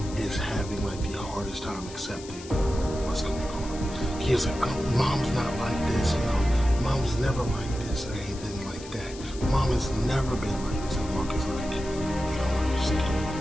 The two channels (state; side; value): noise; left; hiss, 16 dB below the sound